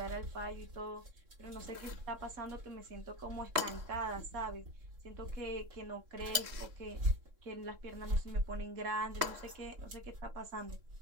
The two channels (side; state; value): left; late; 3.6 ms